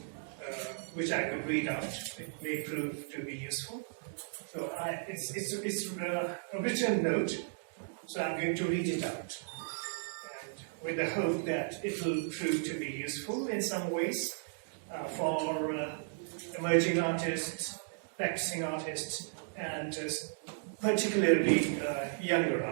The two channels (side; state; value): left; silent; digital silence